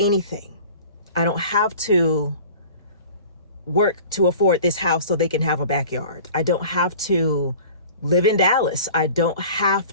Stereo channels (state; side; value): inverted; both; correlation -0.43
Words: I don't have to work to afford this house so they can have a backyard. I don't have to live in Dallas. I don't